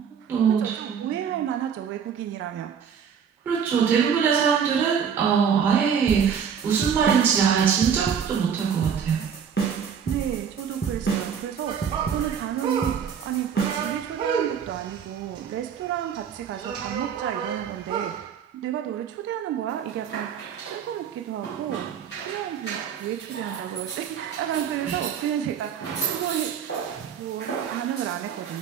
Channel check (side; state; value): left; quieter; 7.6 dB